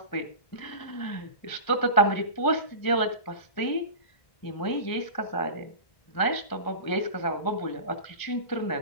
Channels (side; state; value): right; late; 1.0 ms